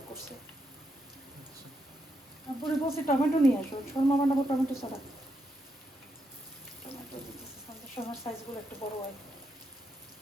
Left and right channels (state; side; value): normal; both; correlation 0.81